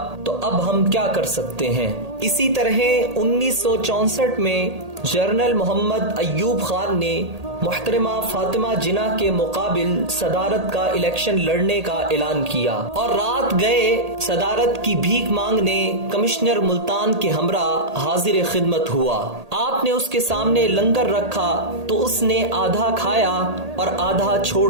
تو اب ہم کیا کر سکتے ہیں۔ اسی طرح 1964 میں جنرل محمد ایوب خان نے محترمہ فاطمہ جناح کے مقابل صدارت کا الیکشن لڑنے کا اعلان کیا اور رات گئے صدارت کی بھیک مانگنے کمشنر ملتان کے ہمراہ حاضر خدمت ہوا۔ آپ نے اس کے سامنے لنگر رکھا تو اس نے آدھا کھایا اور آدھا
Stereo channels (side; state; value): left; late; 1.8 ms